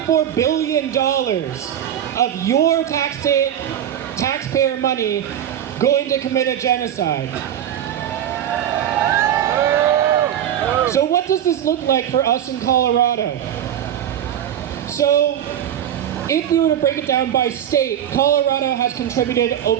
billion of your taxpayer money going to commit a genocide. So what does this look like for us in Colorado? So if we were to break it down by state, Colorado has contributed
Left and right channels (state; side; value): quieter; left; 10.3 dB